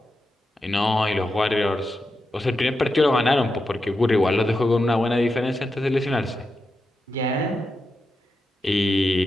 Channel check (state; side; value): normal; both; correlation 0.88